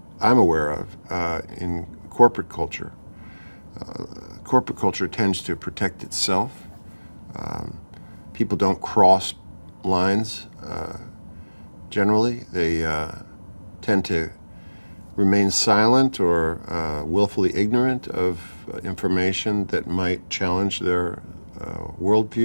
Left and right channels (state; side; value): inverted; both; correlation -1.00